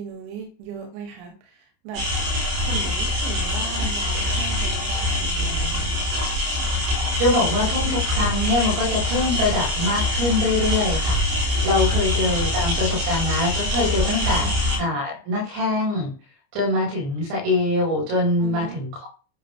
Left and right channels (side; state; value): left; late; 29 ms